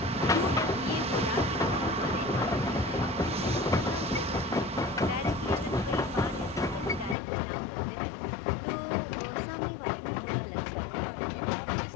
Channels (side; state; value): right; drops out; at 7.2 s